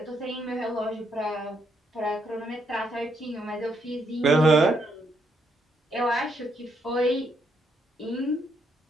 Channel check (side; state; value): both; normal; correlation 0.75